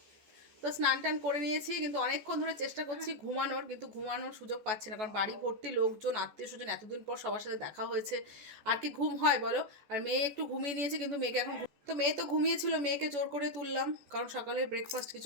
তো স্নান টান করে নিয়েছি, কিন্তু অনেকক্ষণ ধরে চেষ্টা করছি ঘুমানোর, কিন্তু ঘুমানোর সুযোগ পাচ্ছি না, কারণ বাড়ি ভর্তি লোকজন, আত্মীয় স্বজন, এতদিন পর সবার সাথে দেখা হয়েছে, আর কি ঘুম হয় বলো। আর মেয়ে একটু ঘুমিয়ে নিয়েছে, কিন্তু মেয়েকে এখন, তো মেয়ে তো ঘুমিয়েছিল, মেয়েকে জোর করে তুললাম, কারণ সকালে ব্রেকফাস্ট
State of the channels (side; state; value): left; late; 14 ms